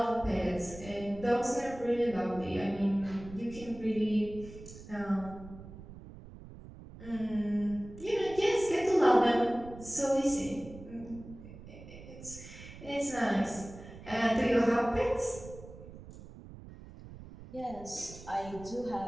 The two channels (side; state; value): right; noise; rumble, 16 dB below the sound